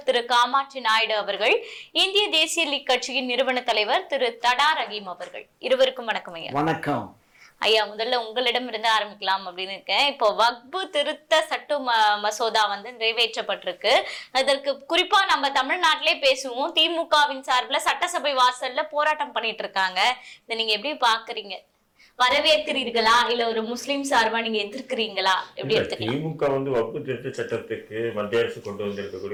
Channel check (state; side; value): identical; both; correlation 1.00